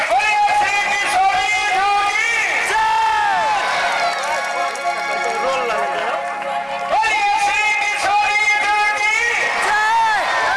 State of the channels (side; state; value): both; identical; correlation 1.00